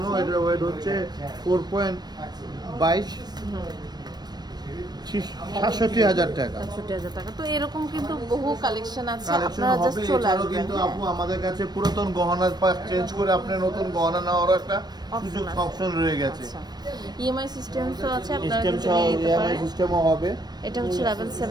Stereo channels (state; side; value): late; left; 0.19 ms